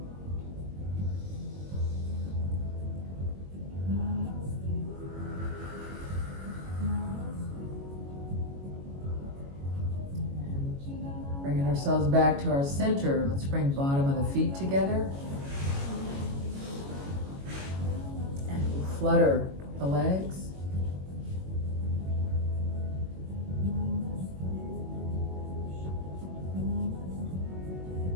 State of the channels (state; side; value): late; left; 22 ms